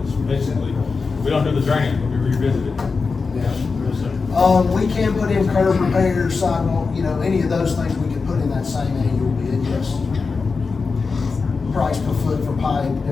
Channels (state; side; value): quieter; right; 4.6 dB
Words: it's basically, we don't do the drainage, but we revisit it. We can put in curb repairs, sidewalk, any of those things we can put in that same annual bid, yes. Price per foot for pipe,